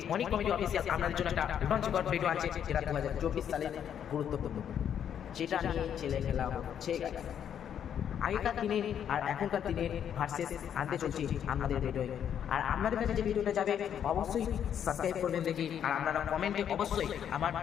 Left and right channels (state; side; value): quieter; right; 9.0 dB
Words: অনেক কমেডি অফিসিয়াল আপনাদের জন্য একটা রোমাঞ্চকর ভিডিও আছে, যেটা 2024 সালে গুরুত্বপূর্ণ, যেটা নিয়ে ছেলে খেলা হচ্ছে। আগেকার দিনের আর এখনকার দিনের ভার্সেস আনতে চলছি আমাদের ভিডিওয়। আর আপনাদের কাছে যে ভিডিওটা যাবে অবশ্যই সাবস্ক্রাইব করবেন দেখি। আর আপনারা কমেন্টে অবশ্যই আমার